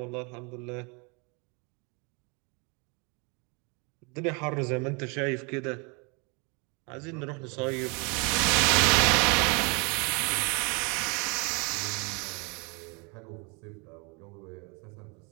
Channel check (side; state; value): left; quieter; 31.8 dB